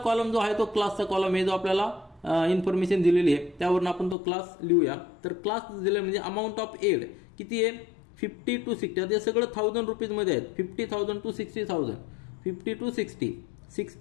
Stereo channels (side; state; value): right; drops out; at 4.2 s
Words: जो आहे तो क्लासचा कॉलम आहे, जो आपल्याला इन्फॉर्मेशन दिलेली आहे त्यावरून आपण तो क्लास लिहूया. तर क्लास दिले म्हणजे अमाऊंट ऑफ एड किती आहे, 50 to 60. ते सगळं 1000 रुपीज मध्ये आहेत. 50,000 to 60,000, 50 to 60,